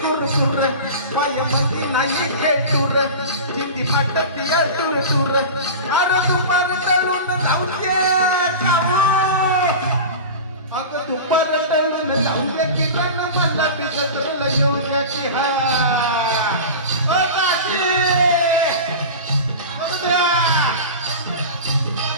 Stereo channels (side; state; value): both; inverted; correlation -0.31